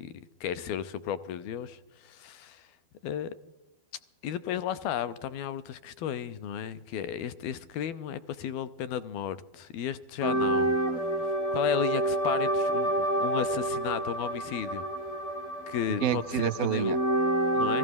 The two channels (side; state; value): right; late; 12 ms